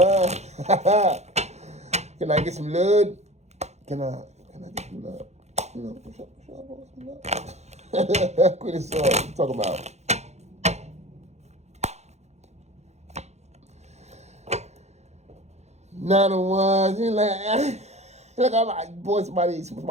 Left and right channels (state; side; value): late; left; 0.32 ms